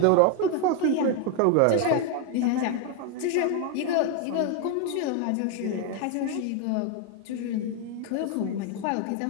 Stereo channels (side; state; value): both; different; correlation 0.01